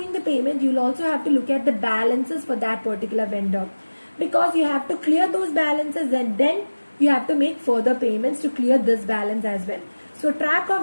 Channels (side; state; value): both; inverted; correlation -1.00